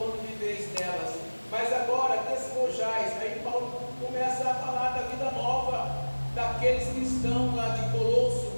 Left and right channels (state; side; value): inverted; both; correlation -1.00